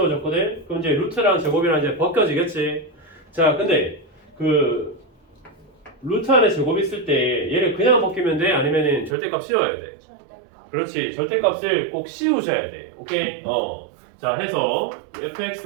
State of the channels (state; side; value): drops out; left; at 9.2 s